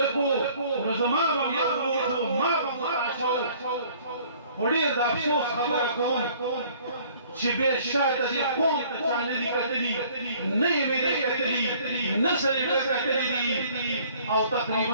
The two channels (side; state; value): both; inverted; correlation -0.56